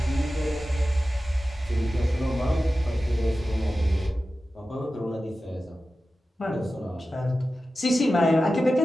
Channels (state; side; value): normal; both; correlation 0.94